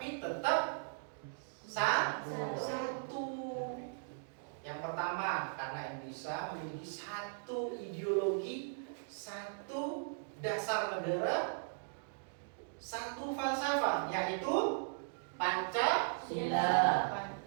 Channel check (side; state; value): left; silent; digital silence